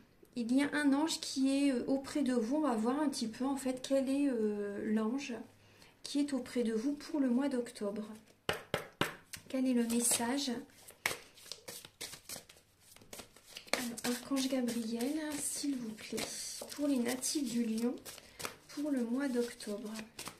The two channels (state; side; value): identical; both; correlation 1.00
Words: Il y a un ange qui est auprès de vous, on va voir un petit peu en fait quel est l'ange qui est auprès de vous pour le mois d'octobre. Quel est le message? Alors, Archange Gabriel, s'il vous plaît, pour les natifs du Lion, pour le mois d'octobre.